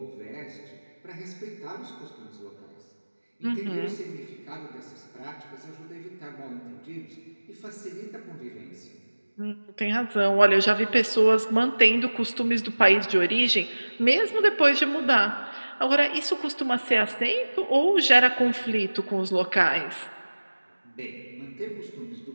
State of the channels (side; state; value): both; inverted; correlation -1.00